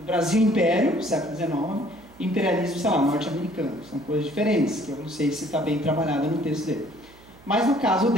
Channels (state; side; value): noise; right; hum, 25 dB below the sound